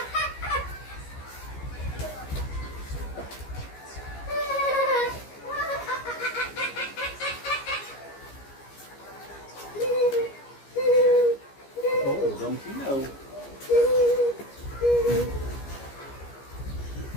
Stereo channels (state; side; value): late; right; 15 ms